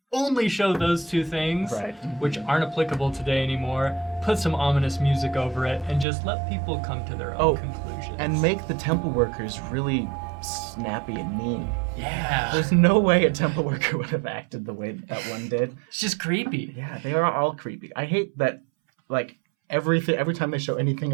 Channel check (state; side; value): drops out; left; at 6.1 s